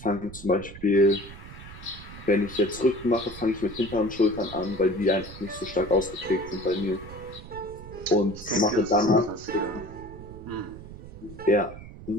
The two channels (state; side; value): noise; right; rumble, 15 dB below the sound